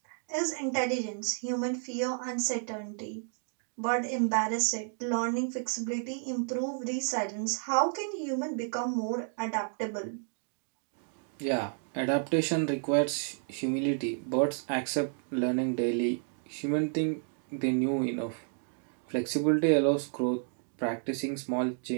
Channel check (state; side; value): silent; left; 57 dB below the other